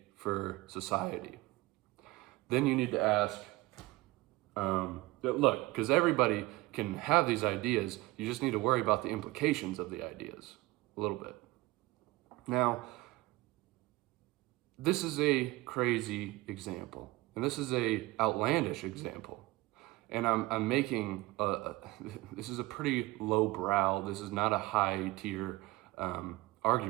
for society? Then you need to ask, look, because everybody can have these ideas, you just need to worry about the implications of the ideas a little bit. Now, this is a crazy example, and this is a outlandish example, and I'm making this is a pretty low brow. This is not a high tier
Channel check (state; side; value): quieter; left; 20.3 dB